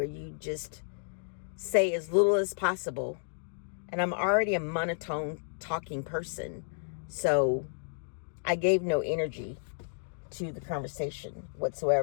you just say as little as possible. And I'm already a monotone talking person. So I gave no energy to the conversation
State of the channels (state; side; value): silent; right; digital silence